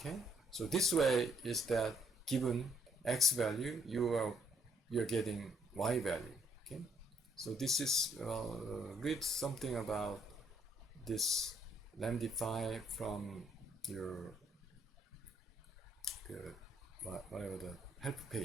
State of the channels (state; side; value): normal; both; correlation 0.69